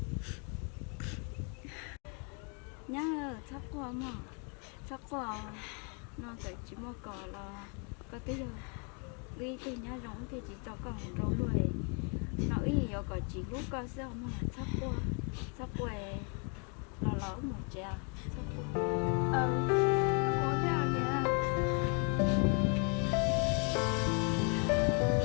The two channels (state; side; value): quieter; right; 37.1 dB